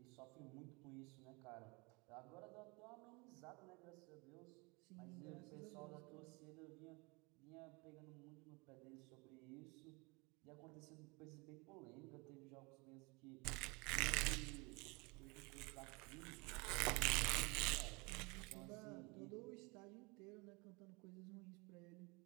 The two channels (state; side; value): quieter; left; 28.0 dB